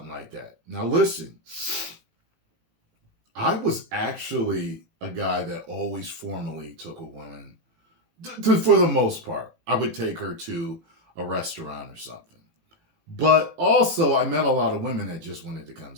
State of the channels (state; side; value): late; left; 18 ms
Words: like that. Now listen, I was actually a guy that always formally took a woman, for the most part. I would take her to a restaurant or something. But also, I met a lot of women that just wanted to come